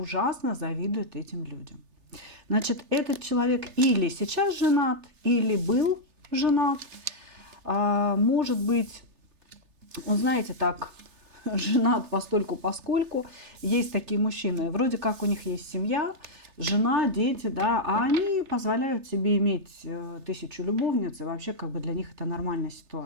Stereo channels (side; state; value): left; late; 3.3 ms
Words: завидует этим людям. Значит, этот человек или сейчас женат, или был женат. Может быть, он, знаете, так, женат постольку-поскольку. Есть такие мужчины, вроде как у них есть семья, жена, дети, да, а они позволяют себе иметь 1000 любовниц, и вообще как бы для них это нормальная